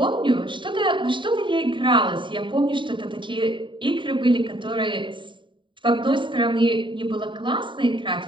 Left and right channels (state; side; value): late; left; 0.23 ms